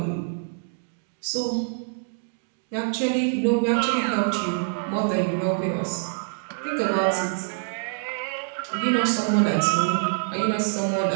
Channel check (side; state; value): left; silent; digital silence